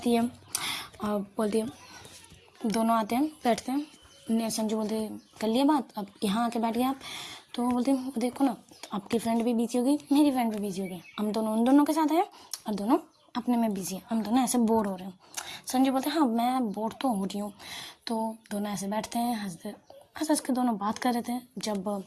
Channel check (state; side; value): identical; both; correlation 1.00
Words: है और बोलती है, दोनों आते हैं बैठते हैं। संजू बोलते कर लिया बात, अब यहाँ आके बैठ गए आप? तो वो बोलते हैं देखो ना, आपकी फ्रेंड भी बिजी हो गई, मेरी फ्रेंड भी बिजी हो गई, हम दोनों उन दोनों के साथ आए और दोनों अपने में बिजी हैं, हम दोनों ऐसे बोर हो रहे हैं। संजू बोलते हैं हाँ मैं बोर तो हो रही हूँ। तो दोनों ऐसे बैठते हैं, हंस के दोनों बात कर रहे थे। जब